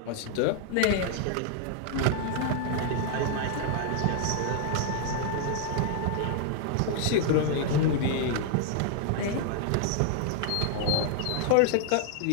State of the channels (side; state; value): both; different; correlation 0.00